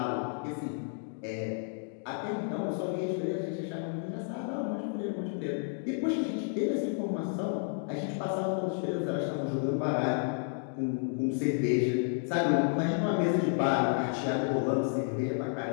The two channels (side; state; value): right; silent; 57 dB below the other